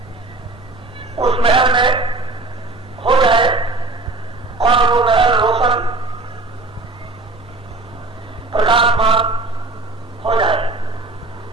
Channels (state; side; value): quieter; left; 3.2 dB